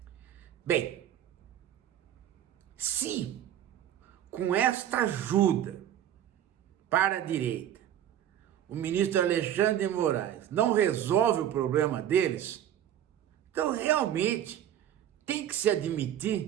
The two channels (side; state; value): left; quieter; 10.9 dB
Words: Bem, se com esta ajuda para a direita, o ministro Alexandre de Moraes não resolve o problema deles, então realmente tem que se